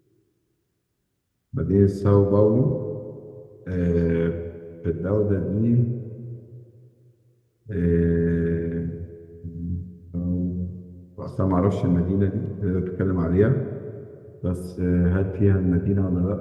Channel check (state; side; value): identical; both; correlation 1.00